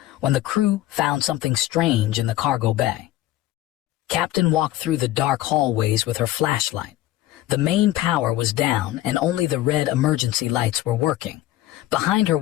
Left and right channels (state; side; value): quieter; right; 14.9 dB